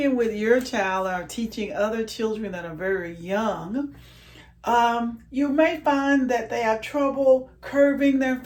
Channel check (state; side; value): identical; both; correlation 1.00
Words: with your child or teaching other children that are very young, you may find that they have trouble curving their